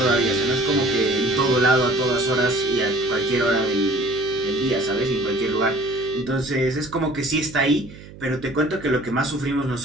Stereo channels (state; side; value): noise; right; hum, 18 dB below the sound